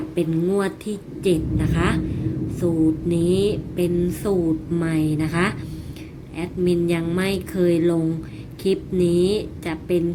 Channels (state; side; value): identical; both; correlation 1.00